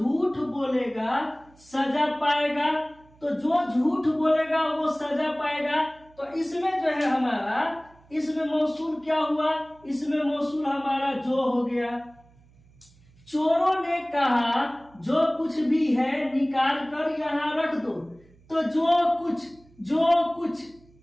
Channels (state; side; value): noise; right; hum, 28 dB below the sound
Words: बोलेगा सजा पाएगा। तो जो झूठ बोलेगा वो सजा पाएगा, तो इसमें जो है हमारा, इसमें मौसूल क्या हुआ, इसमें मौसूल हमारा जो हो गया। चोरों ने कहा जो कुछ भी है निकाल कर यहाँ रख दो, तो जो कुछ